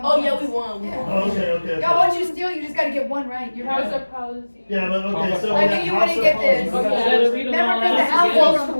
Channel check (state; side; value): inverted; both; correlation -1.00